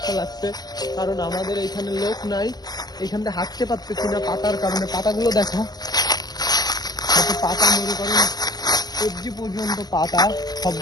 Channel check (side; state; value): right; late; 0.19 ms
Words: লাগছে, কারণ আমাদের এইখানে লোক নাই। এইখান থেকে হাঁটতে পারতেছি না পাতার কারণে। পাতাগুলো দেখো, পাতা মনে করেন সবজি পর্যন্ত পাতা,